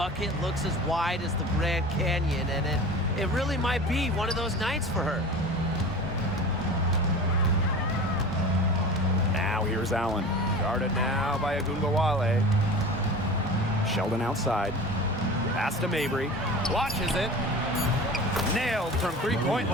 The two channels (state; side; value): normal; both; correlation 0.36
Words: looks as wide as the Grand Canyon, and it really might be one of those nights for her. Now here's Allen. Guarded now by Agungawale. Sheldon outside. Pass to Mabry. Watches it. Nailed from three-point